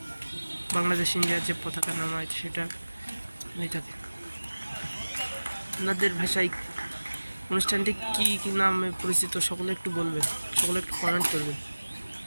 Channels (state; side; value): inverted; both; correlation -1.00